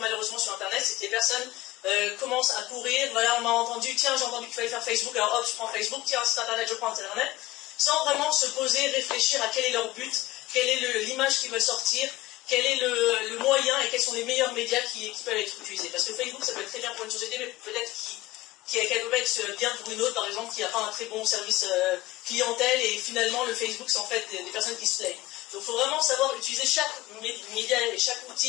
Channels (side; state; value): right; quieter; 18.0 dB